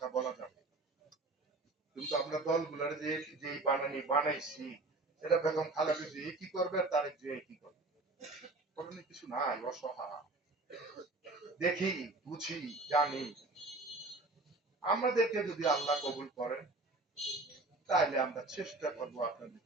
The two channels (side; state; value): left; quieter; 3.1 dB